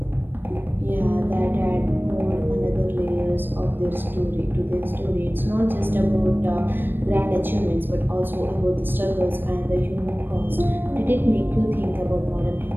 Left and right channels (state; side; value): late; left; 0.096 ms